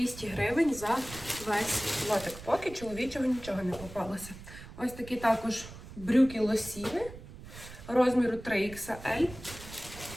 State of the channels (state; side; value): noise; right; rumble, 15 dB below the sound